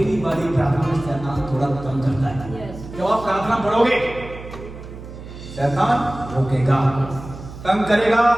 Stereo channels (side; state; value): right; noise; hum, 13 dB below the sound